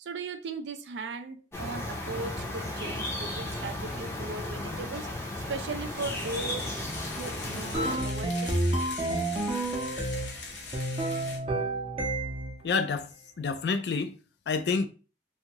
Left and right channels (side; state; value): both; normal; correlation 0.36